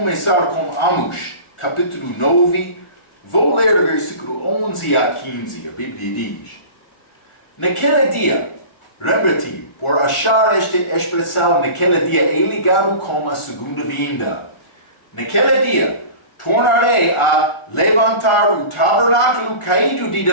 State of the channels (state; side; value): late; right; 1.4 ms